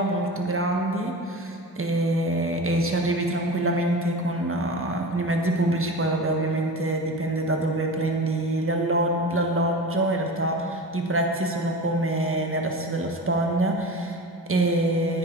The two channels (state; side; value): normal; both; correlation 0.31